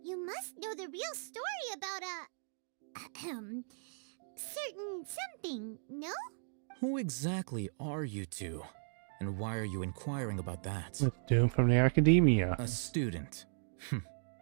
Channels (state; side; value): silent; left; digital silence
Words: you must know the real story about certain something, no? Who exactly are you two? And why are you inquiring about that? Let's do him from the academia. A student.